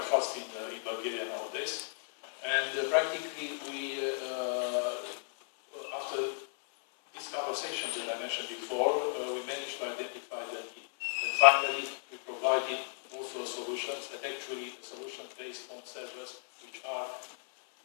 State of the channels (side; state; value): right; silent; 55 dB below the other